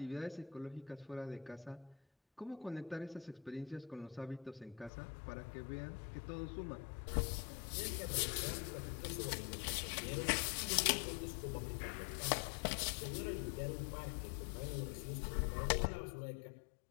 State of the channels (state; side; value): drops out; right; at 4.9 s